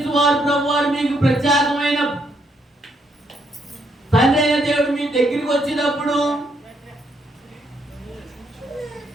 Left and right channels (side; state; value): both; normal; correlation 0.74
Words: వారు ప్రభువారు మీకు ప్రత్యేకమైన తండ్రి అయిన దేవుడు మీ దగ్గరికి వచ్చినప్పుడు